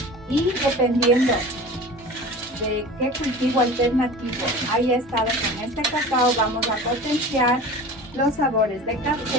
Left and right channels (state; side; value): normal; both; correlation 0.37